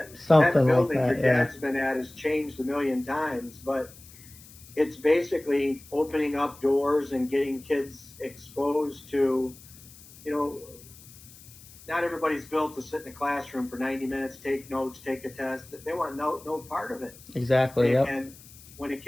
Something like building your that. Yeah. dad's been at has changed a million times, but it's basically opening up doors and getting kids exposed to, you know, not everybody's built to sit in a classroom for 90 minutes, take notes, take a test. They want no part of it. Exactly. Yep. And when a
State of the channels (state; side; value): noise; left; hiss, 21 dB below the sound